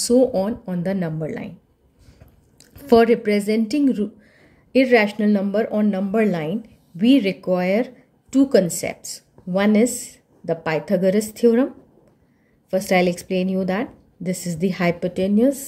on the number line. For representing irrational number on number line, we require two concepts. One is the Pythagoras theorem. First I'll explain you that. This is the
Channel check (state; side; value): identical; both; correlation 1.00